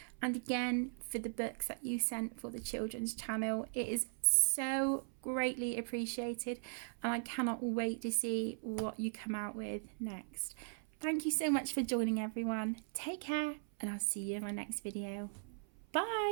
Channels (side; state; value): left; silent; 52 dB below the other